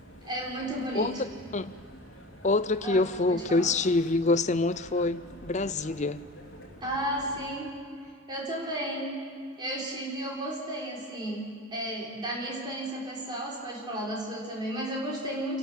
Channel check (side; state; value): both; normal; correlation 0.33